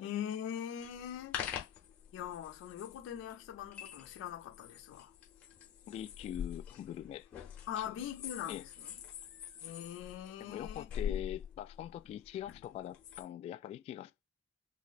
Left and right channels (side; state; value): right; quieter; 9.6 dB